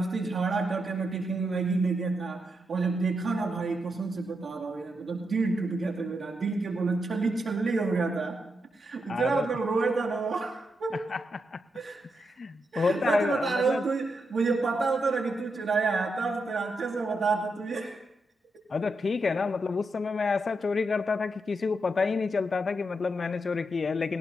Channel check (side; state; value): both; normal; correlation 0.83